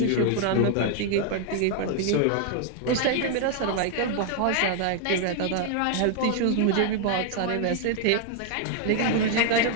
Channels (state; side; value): different; both; correlation 0.00